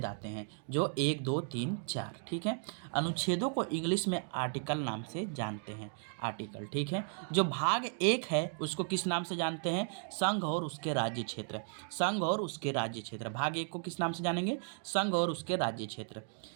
आते हैं, जो 1, 2, 3, 4। ठीक है। अनुच्छेदों को इंग्लिश में आर्टिकल नाम से जानते हैं। आर्टिकल, ठीक है। जो भाग एक है उसको किस नाम से जानते हैं? संघ और उसके राज्य क्षेत्र। संघ और उसके राज्य क्षेत्र। भाग एक को किस नाम से जानेंगे? संघ और उसके राज्य क्षेत्र।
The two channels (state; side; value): silent; left; 54 dB below the other